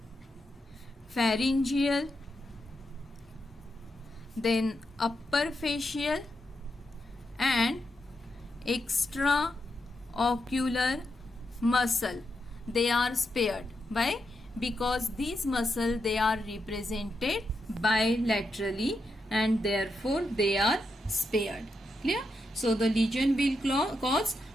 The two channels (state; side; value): normal; both; correlation 0.85